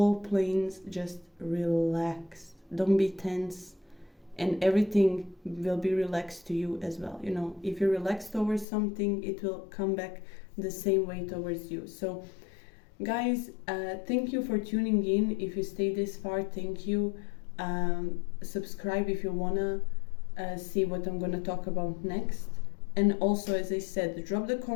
planes. Just relax. Don't be tense, and everything will be relaxed to you as well. If you're relaxed towards something, it will come back the same way towards you. So guys, thank you for tuning in. If you stay this far, thank you. Subscribe if you wanna see what I'm gonna talk about next. And also, as I said, drop the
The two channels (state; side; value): drops out; right; at 8.7 s